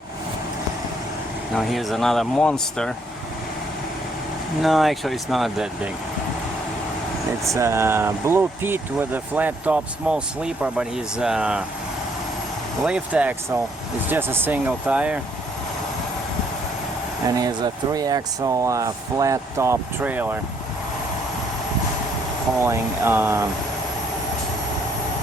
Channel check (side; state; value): both; normal; correlation 0.69